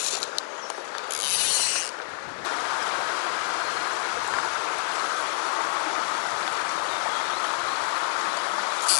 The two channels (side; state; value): right; silent; 60 dB below the other